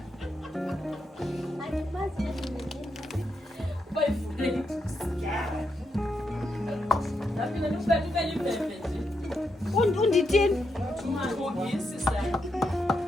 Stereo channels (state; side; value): normal; both; correlation 0.82